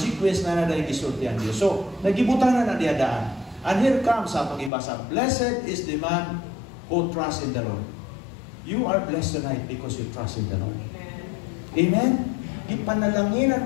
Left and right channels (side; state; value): right; drops out; at 4.7 s